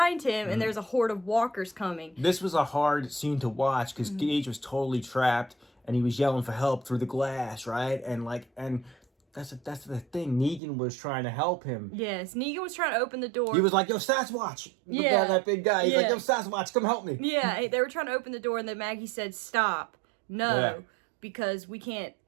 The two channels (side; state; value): left; drops out; at 10.6 s